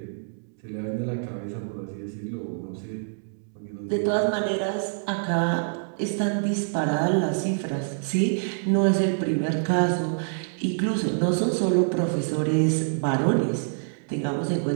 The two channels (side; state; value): left; silent; digital silence